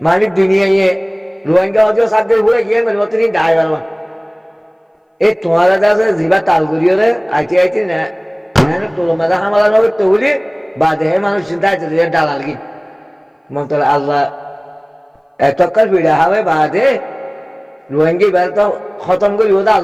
মানে দুনিয়ায় রোহিঙ্গা হজো সাথে ঘুরে গিয়ে মেরে মতনি দায় বারবা এই তোমারা আছে জিবা তালগুড়িওরে আইতে না তোর মাথা হামালা নবে তো বলি বা দেহে মানুষ চিন্তা আছে ডালাল কি মন্তর আল্লাহ এতকাল ভিড়া হবে বাদে রোহিঙ্গি বের তো খতম করি ওটা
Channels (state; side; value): identical; both; correlation 1.00